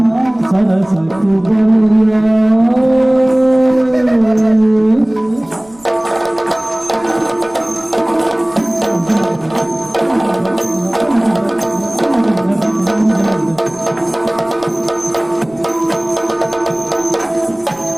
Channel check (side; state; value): right; noise; rumble, 27 dB below the sound